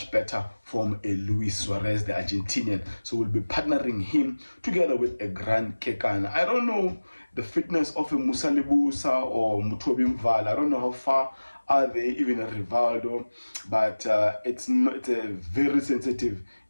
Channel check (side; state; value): both; inverted; correlation -1.00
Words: better from a Luis Suarez, the Argentinian. So we'll be partnering him together with a Grand Kekan. I don't know the fitness of a Musa Libusa or Mutobi Mval. I don't know how far are they, even a Rivaldo, but it's a very sensitive